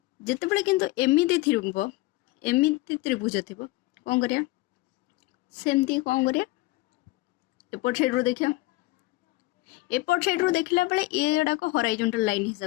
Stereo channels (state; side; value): quieter; right; 20.1 dB